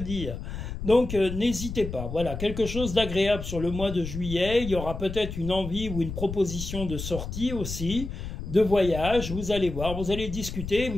Donc n'hésitez pas, voilà, quelque chose d'agréable sur le mois de juillet, il y aura peut-être une envie ou une proposition de sortie aussi, de voyage, vous allez voir, vous allez discuter,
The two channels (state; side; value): noise; left; rumble, 7 dB below the sound